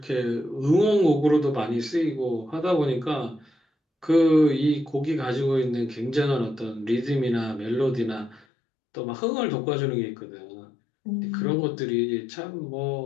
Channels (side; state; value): right; drops out; at 8.5 s